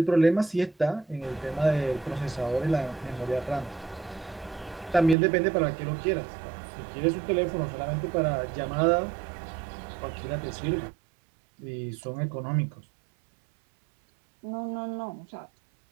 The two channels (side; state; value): left; drops out; at 5.2 s